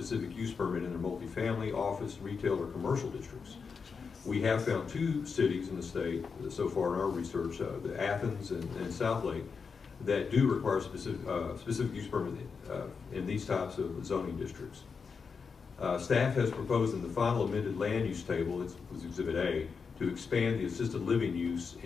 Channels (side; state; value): right; quieter; 5.5 dB